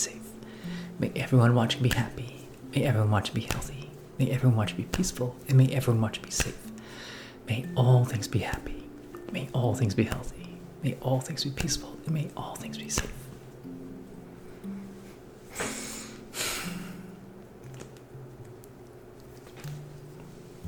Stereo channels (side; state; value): both; identical; correlation 1.00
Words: May everyone watching be happy, may everyone watching be healthy, may everyone watching be peaceful, and may everyone watching be safe. May all things be happy, may all things be healthy, may all things be peaceful, and may all things be safe.